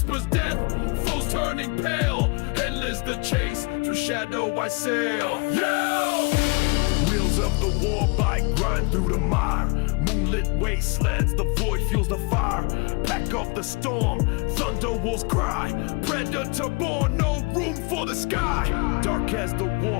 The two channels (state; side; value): quieter; right; 29.5 dB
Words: death, foes turning pale. Endless the chase, through shadow I sail. Yeah! Wheels of the war bike grind through the mire. Moonlit wastelands, the void fuels the fire. Pack of the storm, thunder wolves cry. Predator born, no room for the sky. Dark as the